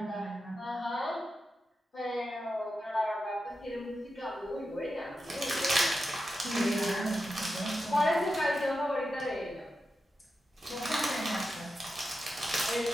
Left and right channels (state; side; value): normal; both; correlation 0.90